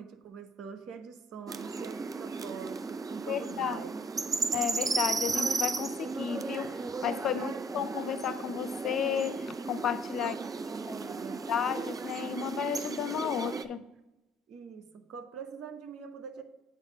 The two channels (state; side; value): normal; both; correlation 0.61